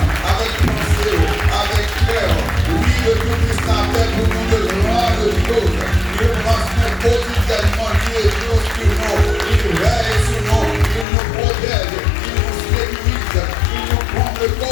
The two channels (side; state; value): right; drops out; at 11.1 s